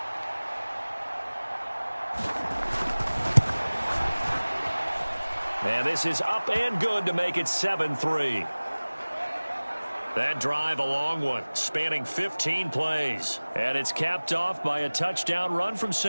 And this is up and good to make it 7-3. That drive a long one, spanning 15 plays. And it's capped off by a touchdown run from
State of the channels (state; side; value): inverted; both; correlation -1.00